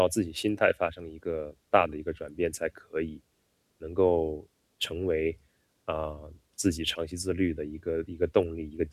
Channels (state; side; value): identical; both; correlation 1.00